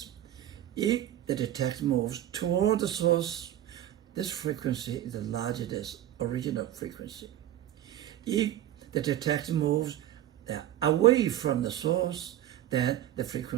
if the detector moves toward the source, this frequency is larger than the original frequency. If the detector moves away from the source, then the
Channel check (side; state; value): left; quieter; 12.5 dB